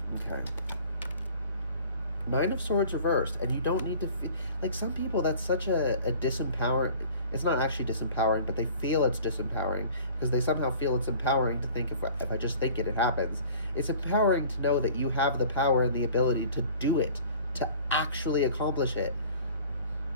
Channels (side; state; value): both; inverted; correlation -0.47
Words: Okay. 9 of Swords reversed, and you don't need to feel like some people. That's such a disempowering. It's not actually disempowering, but they feel it's disempowering because they somehow feel it's empowering to think if I just think it happens. It's empowering to know that you have the power and the ability to do it, to actually accomplish it.